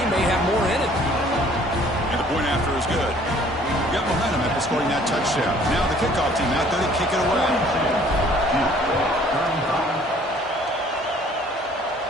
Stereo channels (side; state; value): both; normal; correlation 0.56